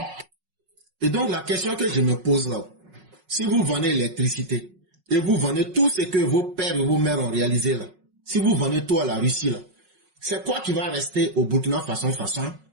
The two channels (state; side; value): late; left; 5.4 ms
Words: Et donc la question que je me pose là, si vous vendez l'électricité et vous vendez tout ce que vos pères et vos mères ont réalisé là, si vous vendez tout à la Russie là, c'est quoi qui va rester au Burkina Faso